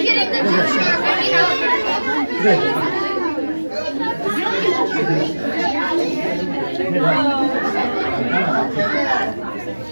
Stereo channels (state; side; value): inverted; both; correlation -1.00